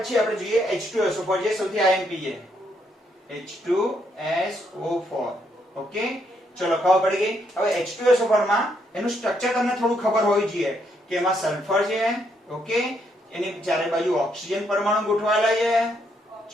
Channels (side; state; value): both; normal; correlation 0.75